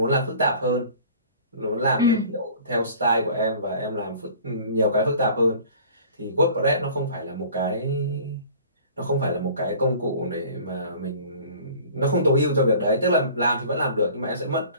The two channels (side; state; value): both; inverted; correlation -0.47